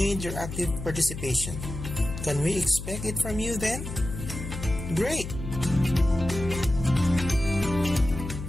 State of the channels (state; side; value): noise; left; hum, 8 dB below the sound